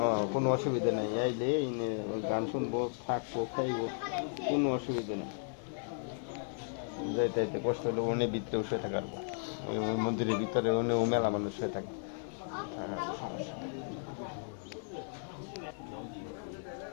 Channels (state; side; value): silent; right; 54 dB below the other